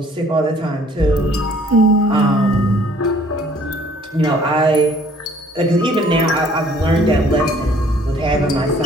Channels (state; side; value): normal; both; correlation 0.58